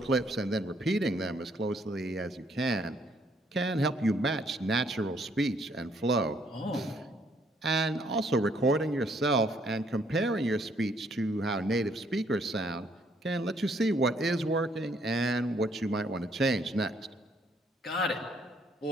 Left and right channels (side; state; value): both; normal; correlation 0.68